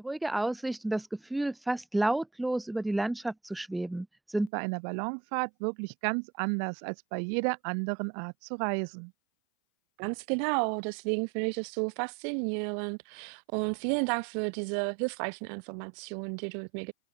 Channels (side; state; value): left; drops out; at 4.5 s